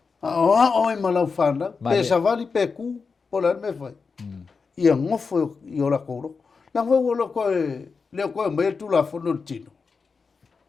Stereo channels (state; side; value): quieter; right; 4.9 dB